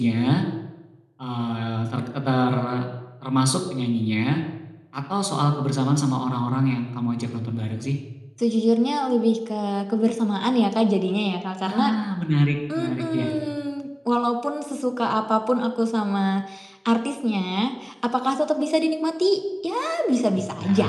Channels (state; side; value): identical; both; correlation 1.00